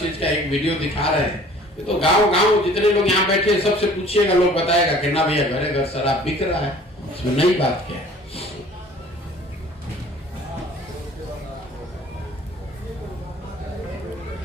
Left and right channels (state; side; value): normal; both; correlation 0.50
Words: का एक वीडियो दिखा रहे हैं। ये तो गांव जितने लोग यहाँ बैठे हैं सबसे पूछिएगा, लोग बताएगा कि ना भैया घरे घर शराब बिक रहा है। इसमें नई बात क्या है?